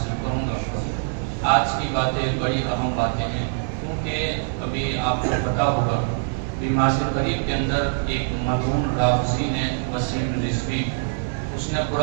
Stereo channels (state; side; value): silent; left; 63 dB below the other